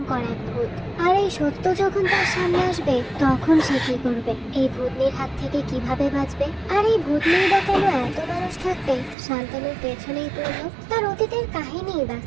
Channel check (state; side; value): drops out; left; at 9.2 s